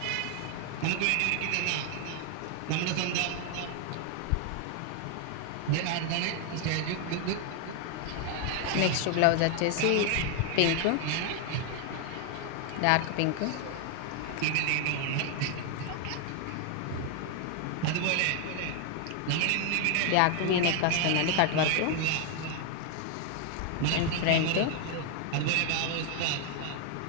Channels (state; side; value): different; both; correlation 0.00